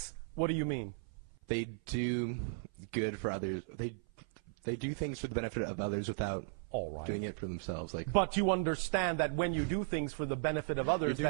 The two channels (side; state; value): left; silent; 54 dB below the other